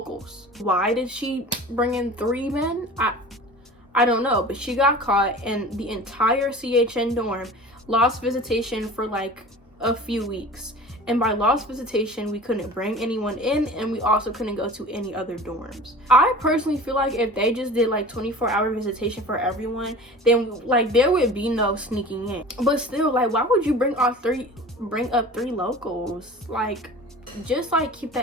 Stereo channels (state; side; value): normal; both; correlation 0.39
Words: Why did she bring in 3 men? I don't know, but she got caught, and the entire CHN dorm lost visitation for like a few weeks. and by lost visitation we couldn't bring anyone in, and we also couldn't go to any other dorms. I personally feel like if they just did like 24-hour visitation for everyone, then like there would be no sneaking in. But still, like, why would you bring up 3 locals? Like, just like keep